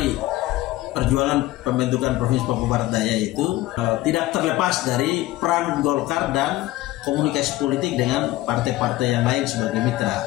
perjuangan pembentukan Provinsi Papua Barat Daya itu tidak terlepas dari peran Golkar dan komunikasi politik dengan partai-partai yang lain sebagai mitra.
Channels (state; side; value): quieter; right; 16.9 dB